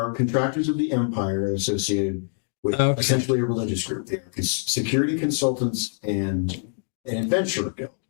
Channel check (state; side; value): silent; right; digital silence